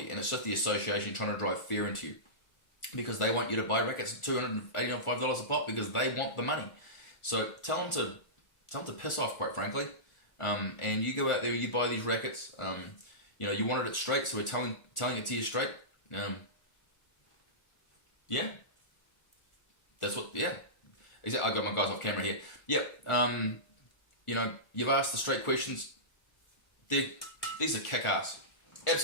and it's just the association trying to drive fear into you because they want you to buy rackets at $285 a pop because they want the money. So tell them to piss off, quite frankly. And you go out there, you buy these rackets. You wanted it straight, so we're telling it to you straight. Yeah, that's what. Yeah, exactly. I got my guys off camera here. Yep. You've asked the straight questions. These are kick-ass,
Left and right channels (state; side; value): late; right; 1.4 ms